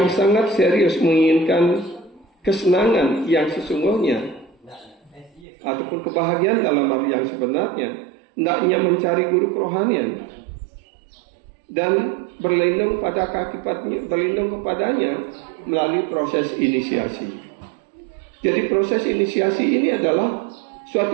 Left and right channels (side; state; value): left; drops out; at 5.5 s